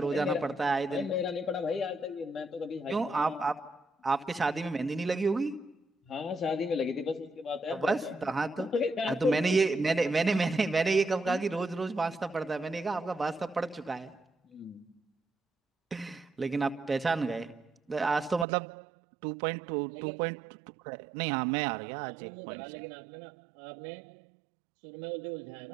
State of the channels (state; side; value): drops out; left; at 18.4 s